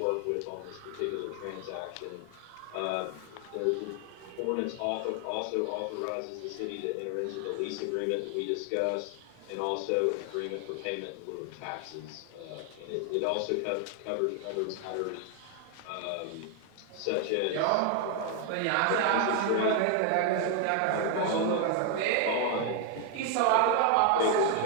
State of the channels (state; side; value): different; both; correlation 0.00